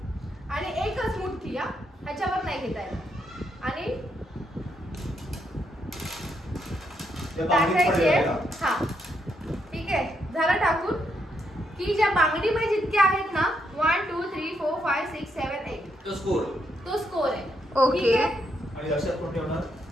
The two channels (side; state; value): both; normal; correlation 0.78